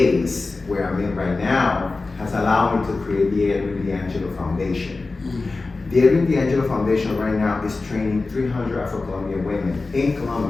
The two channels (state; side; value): quieter; right; 3.6 dB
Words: where I'm in right now has allowed me to create the Edwing D'Angelo Foundation. The Edwing D'Angelo Foundation right now is training 300 Afro-Colombian women in